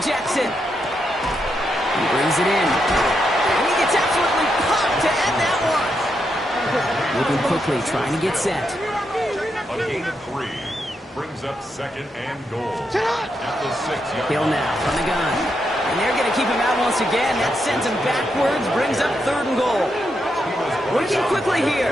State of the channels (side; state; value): both; normal; correlation 0.82